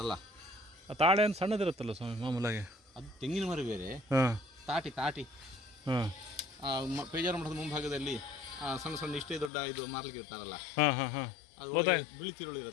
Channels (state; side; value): drops out; right; at 9.5 s